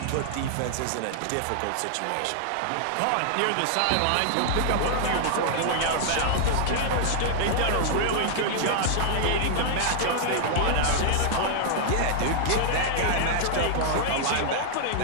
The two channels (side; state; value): both; different; correlation -0.01